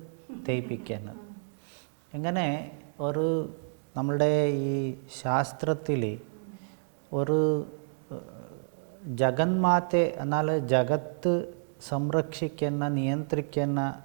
തേപ്പിക്കുന്നത്. ഇങ്ങനെ ഒരു നമ്മളുടെ ഈ ശാസ്ത്രത്തിൽ ഒരു ജഗന്മാത്തെ എന്നാൽ ജഗത്ത് സംരക്ഷിക്കുന്ന നിയന്ത്രിക്കുന്ന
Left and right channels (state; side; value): silent; left; digital silence